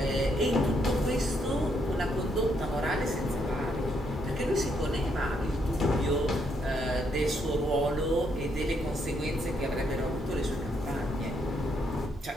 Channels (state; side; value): normal; both; correlation 0.75